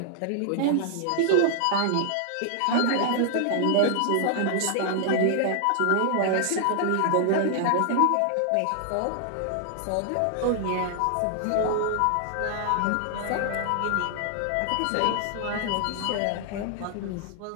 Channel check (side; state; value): both; different; correlation 0.00